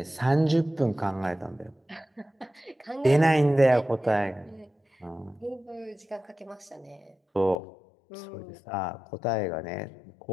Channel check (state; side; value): drops out; right; at 7.6 s